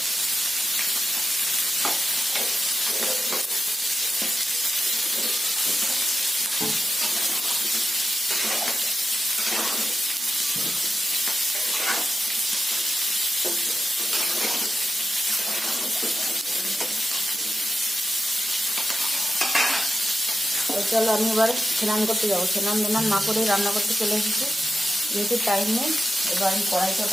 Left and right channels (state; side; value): normal; both; correlation 0.91